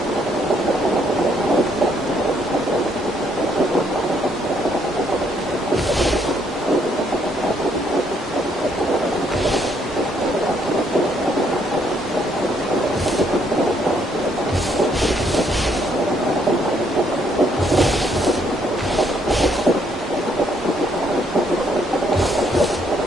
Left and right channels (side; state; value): both; normal; correlation 0.70